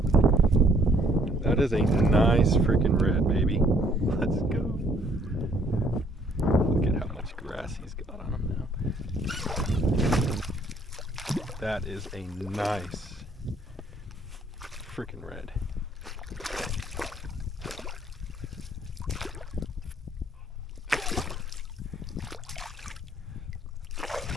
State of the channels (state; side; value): normal; both; correlation 0.63